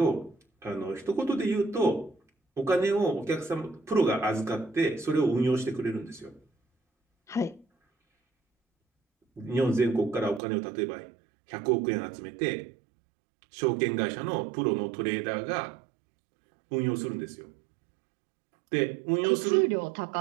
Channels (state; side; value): drops out; left; at 10.4 s